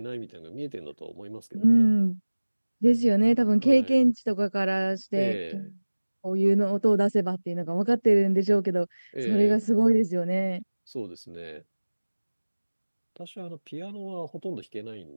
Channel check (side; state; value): both; inverted; correlation -1.00